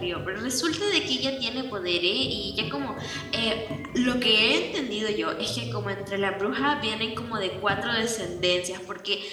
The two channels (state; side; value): identical; both; correlation 1.00